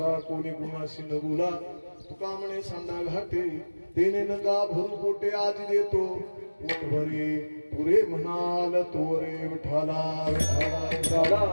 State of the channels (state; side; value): inverted; both; correlation -1.00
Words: कोणी गुणाशी न बोला. तुका म्हणे सांडा घाटे तेने नका भरू पोटे. आज देतो पोट भरी पुरे म्हणाल तोरे. विठाला विठाला